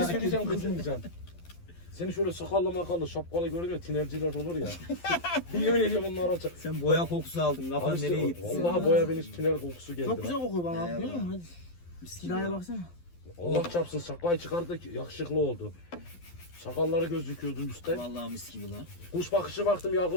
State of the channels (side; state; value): right; late; 12 ms